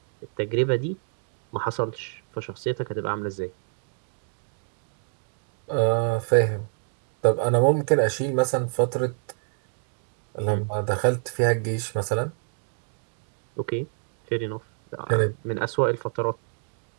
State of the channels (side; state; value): left; silent; 60 dB below the other